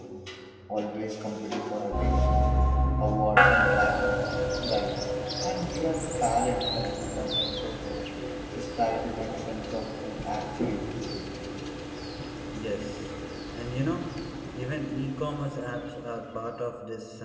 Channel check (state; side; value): identical; both; correlation 1.00